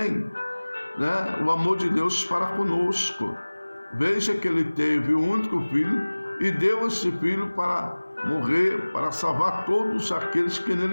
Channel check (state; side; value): inverted; both; correlation -1.00